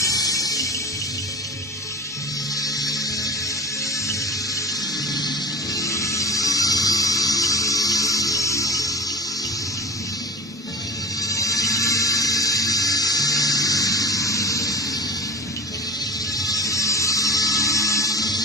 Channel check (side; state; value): both; normal; correlation 0.32